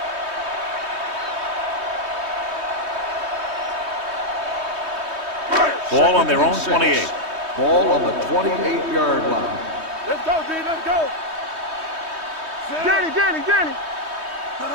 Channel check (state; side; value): late; left; 3.2 ms